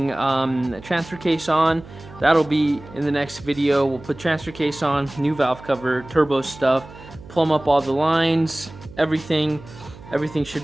transfer case on. That'll be in the next video. We'll put transfer case on, new valve cover, turbo stuff, plumb up all the lines, everything should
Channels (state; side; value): noise; right; hum, 18 dB below the sound